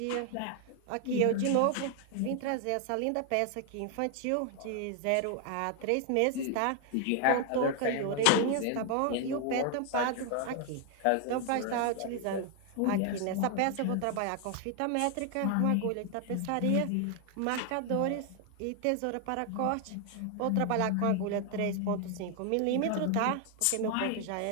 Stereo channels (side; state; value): both; different; correlation 0.00